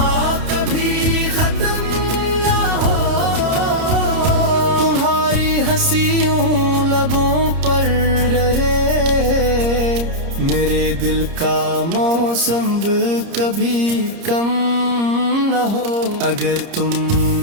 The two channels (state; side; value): late; left; 30 ms